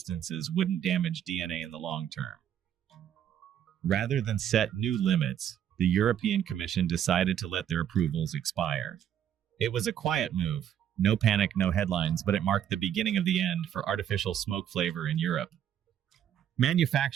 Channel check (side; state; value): left; quieter; 9.9 dB